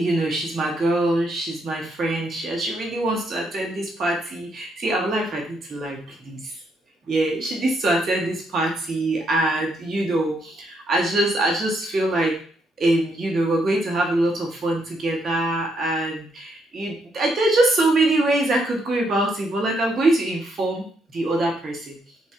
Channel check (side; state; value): both; normal; correlation 0.75